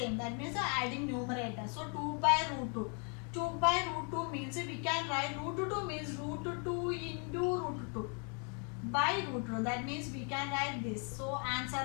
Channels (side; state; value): right; quieter; 38.5 dB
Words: That means adding numerator. So, 2 by root 2. 2 by root 2 means we can write root 2 means root 2 into root 2 by root 2. That means we can write this. So, answer